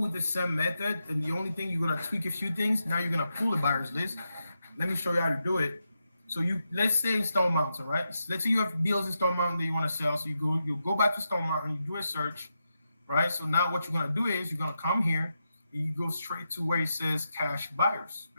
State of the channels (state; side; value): inverted; both; correlation -0.86